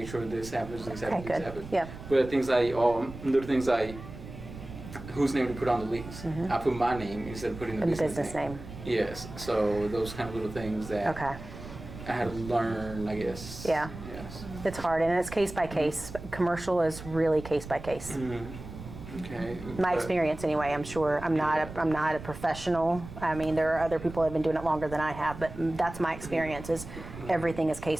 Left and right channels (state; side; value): noise; right; rumble, 13 dB below the sound